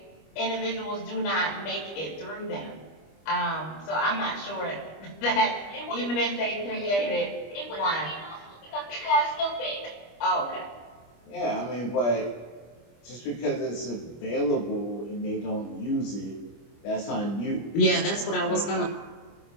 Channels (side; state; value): right; late; 25 ms